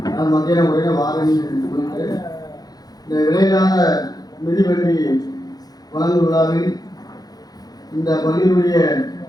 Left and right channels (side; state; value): right; late; 0.19 ms